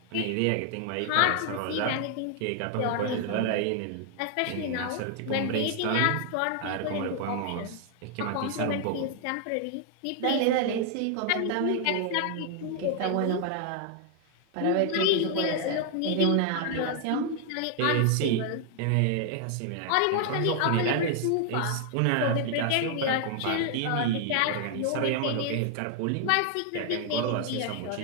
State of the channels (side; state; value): both; different; correlation 0.00